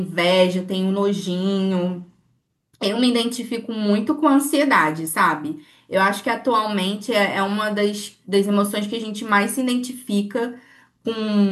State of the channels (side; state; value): both; identical; correlation 1.00